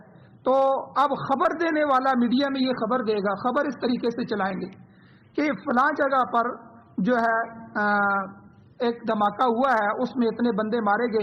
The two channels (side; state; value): both; identical; correlation 1.00